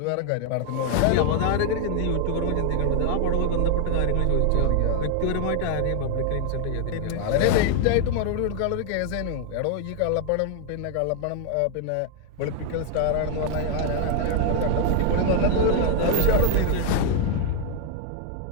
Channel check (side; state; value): both; different; correlation 0.00